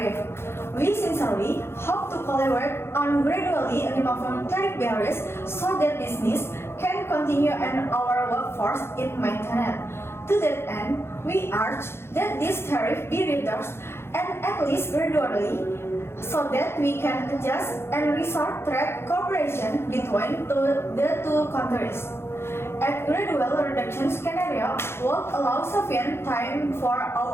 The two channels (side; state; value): right; late; 0.12 ms